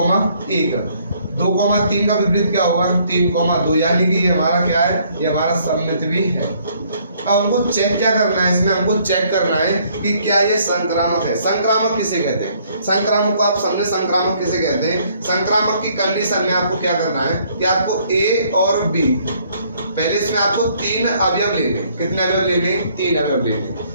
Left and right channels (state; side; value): inverted; both; correlation -0.64